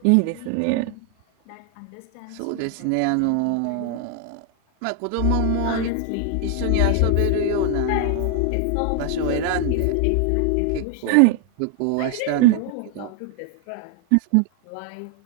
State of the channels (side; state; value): both; different; correlation 0.00